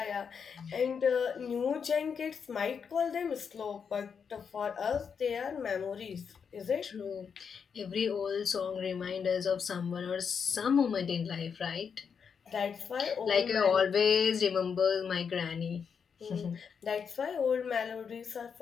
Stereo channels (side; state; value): right; quieter; 6.5 dB